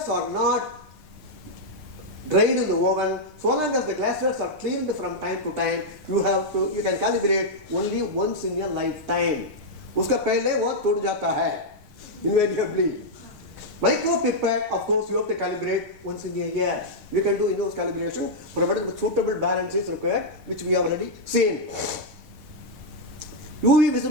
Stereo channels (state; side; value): late; left; 6.5 ms